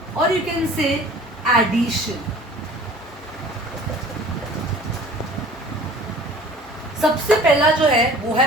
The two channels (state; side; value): normal; both; correlation 0.46